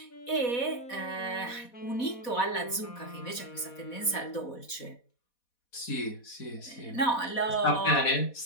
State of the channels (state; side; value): late; right; 4.1 ms